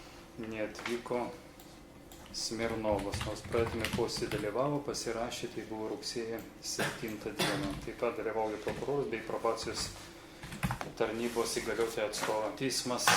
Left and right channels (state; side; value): identical; both; correlation 1.00